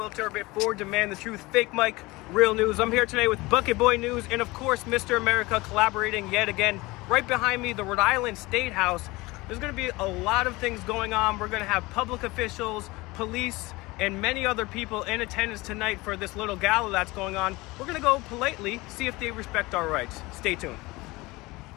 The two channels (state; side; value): quieter; right; 21.9 dB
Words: Turbot for Demand the Truth, Fake Mike, Real News. I'm here today with Bucket Boy News and, of course, Mr. America collaborating yet again. Right behind me, the Rhode Island State House. There's going to be a lot of things going on. We're going to have public officials, police, and many other people in attendance tonight for this little gala that's going on. We're going to go politely, see if they respect our rights. Stay tuned.